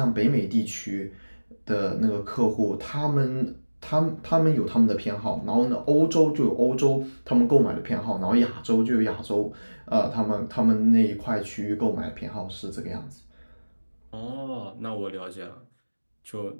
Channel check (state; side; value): inverted; both; correlation -1.00